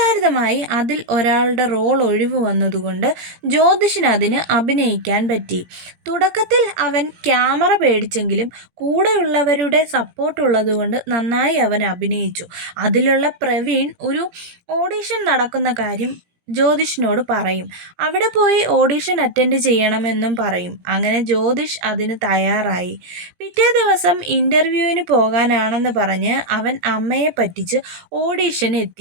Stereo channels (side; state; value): left; late; 17 ms